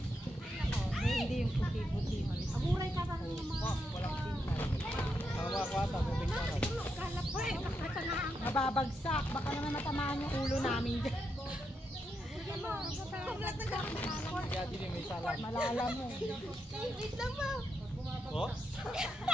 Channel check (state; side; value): normal; both; correlation 0.82